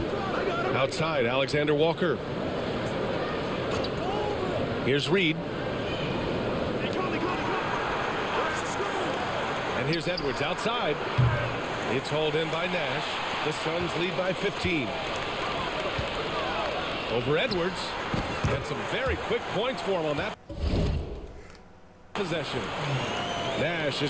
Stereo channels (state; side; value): identical; both; correlation 1.00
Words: Outside, Alexander Walker. Here's Reid. And here's Edwards outside. It's hauled in by Nash. The Suns lead by 15. Over Edwards. And some very quick points for him on that possession. Nash